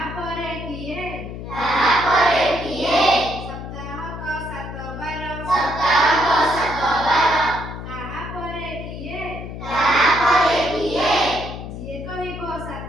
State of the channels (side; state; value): left; noise; hum, 9 dB below the sound